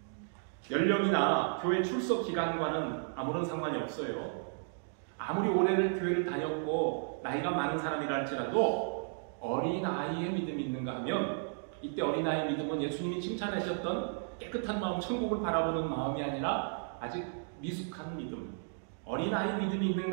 연령이나 교회 출석 기간과는 아무런 상관이 없어요. 아무리 오래를 교회를 다녔고 나이가 많은 사람이라 할지라도 어린아이의 믿음이 있는가 하면 이때 어린아이의 믿음은 예수님이 칭찬하셨던 깨끗한 마음, 천국을 바라보는 마음이 아니라 아직 미숙한 믿음, 어린아이 믿음이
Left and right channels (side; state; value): left; silent; digital silence